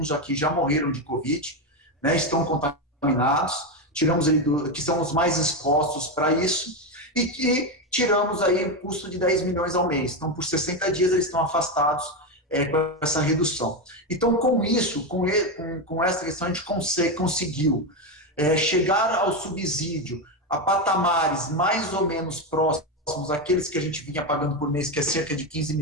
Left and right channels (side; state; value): both; normal; correlation 0.11